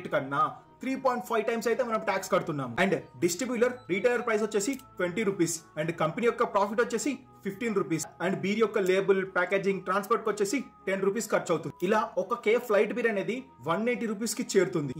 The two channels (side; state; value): both; identical; correlation 1.00